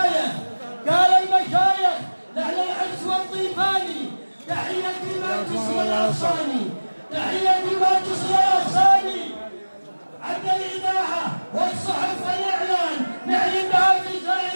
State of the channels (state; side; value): inverted; both; correlation -1.00